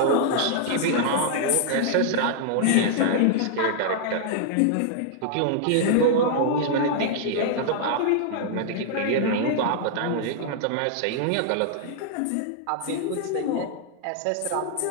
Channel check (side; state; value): both; different; correlation -0.01